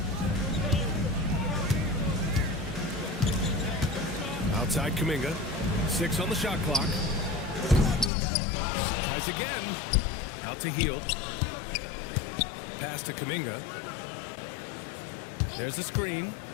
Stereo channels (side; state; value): right; drops out; at 8.1 s